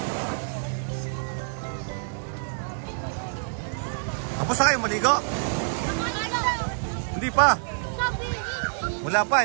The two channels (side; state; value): left; silent; digital silence